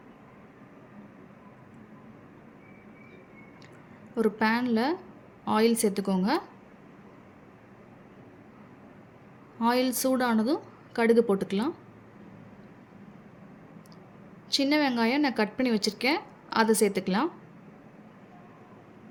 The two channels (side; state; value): both; identical; correlation 1.00